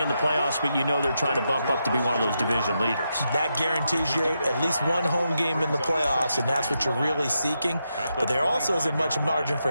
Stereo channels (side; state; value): both; inverted; correlation -0.84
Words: in the playoffs, but you know they're trying to bump up to be one of those division leaders. That guarantees you at least one home game in the playoffs, and that's what you're really seeking. But there also isn't much margin for